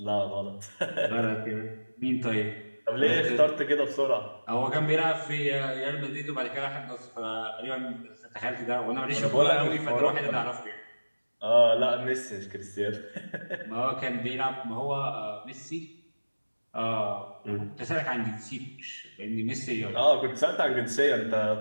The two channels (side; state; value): both; inverted; correlation -1.00